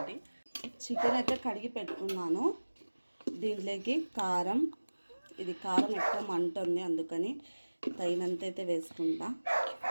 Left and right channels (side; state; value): both; inverted; correlation -1.00